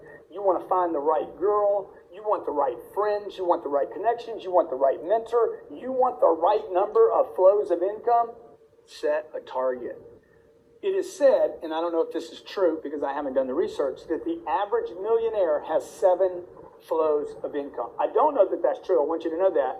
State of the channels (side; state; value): both; identical; correlation 1.00